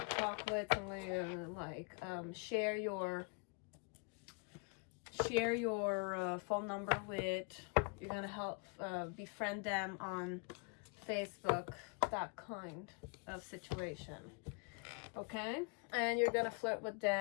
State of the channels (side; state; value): right; quieter; 33.7 dB